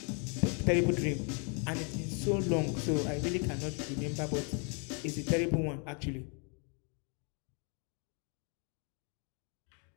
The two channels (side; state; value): right; quieter; 37.7 dB